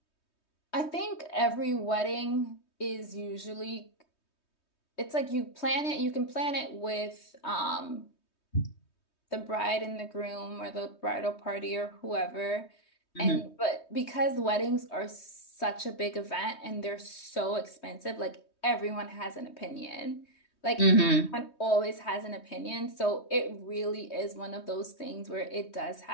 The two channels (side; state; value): right; late; 3.2 ms